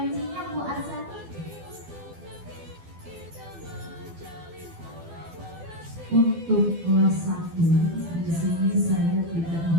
Bu Arsati? Untuk kelas 1 di sini saya tidak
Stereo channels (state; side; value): late; left; 12 ms